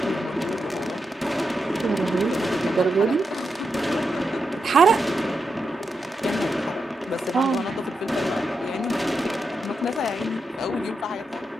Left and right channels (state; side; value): normal; both; correlation 0.86